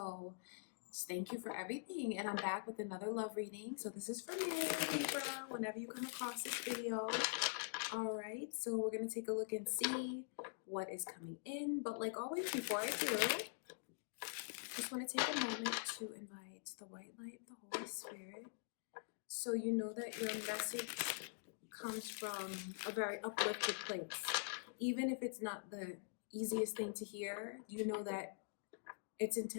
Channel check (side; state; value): right; silent; digital silence